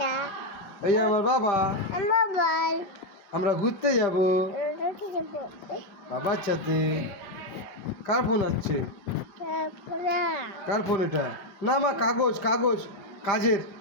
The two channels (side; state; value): right; late; 5.1 ms